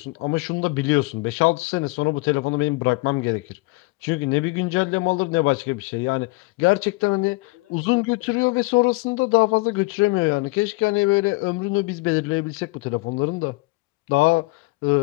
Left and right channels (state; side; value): quieter; right; 24.7 dB